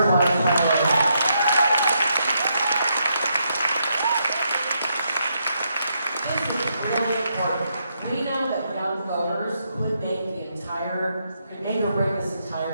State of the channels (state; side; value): inverted; both; correlation -0.78